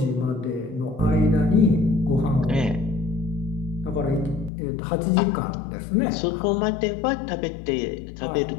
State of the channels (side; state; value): right; drops out; at 4.5 s